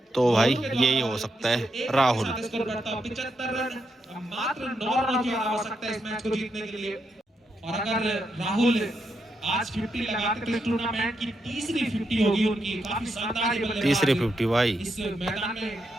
तो भाई यही हो सकता है राहुल। 75 रन, मात्र 9 रनों की आवश्यकता है इस मैच को जीतने के लिए। और अगर राहुल आज 50 लगाते तो इस टूर्नामेंट की तीसरी 50 होगी उनकी। काफी शानदार बल्लेबाजी। तीसरी 50 भाई। इस मैदान में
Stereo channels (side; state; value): both; normal; correlation 0.82